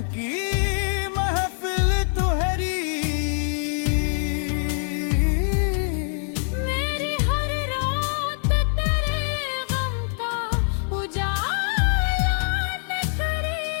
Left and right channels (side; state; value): right; silent; 62 dB below the other